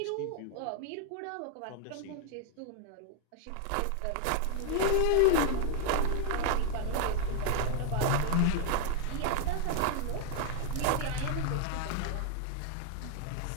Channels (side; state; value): both; different; correlation 0.00